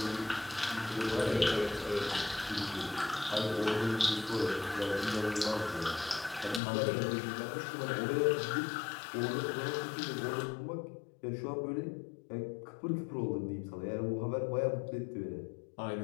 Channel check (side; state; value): right; drops out; at 6.6 s